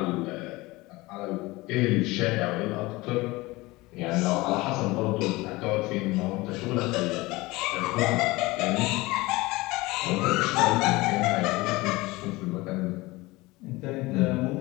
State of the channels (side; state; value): right; quieter; 21.3 dB